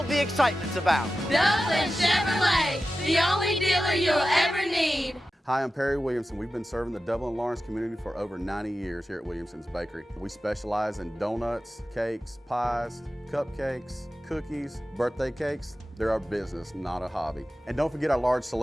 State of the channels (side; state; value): both; normal; correlation 0.94